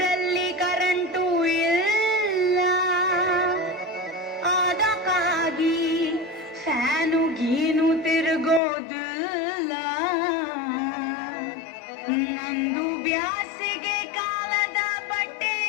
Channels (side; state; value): right; drops out; at 8.6 s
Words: current ಇಲ್ಲ ಅದಕ್ಕಾಗಿ ಫ್ಯಾನು ಗೀನು ತಿರುಗೋದಿಲ್ಲ ನಂದು ಬ್ಯಾಸಿಗೆ ಕಾಲದ ಬಟ್ಟೆ